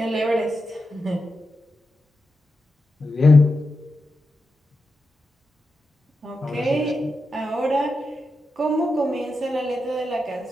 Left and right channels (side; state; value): both; normal; correlation 0.89